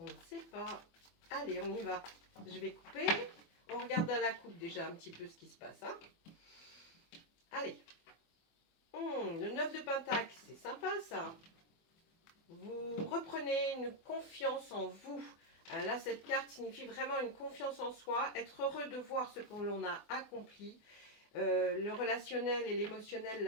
ne sait pas. Allez, on y va. Je vais couper. On regarde à la coupe déjà un petit peu ce qui se passe. Hein. Allez, le 9 de Pentacle, c'est sympa ça. Vous reprenez une confiance en vous. Là, cette carte signifie vraiment une confiance en soi, être heureux de voir ce que l'on a accompli. Le relationnel et l'émotionnel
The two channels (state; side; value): late; right; 24 ms